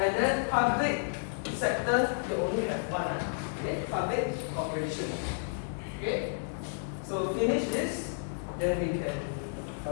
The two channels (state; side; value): silent; right; digital silence